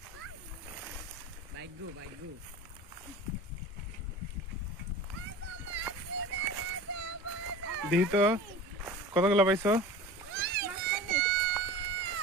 বাইক গো দেখি তো কতগুলো পাইছো?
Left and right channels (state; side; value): normal; both; correlation 0.35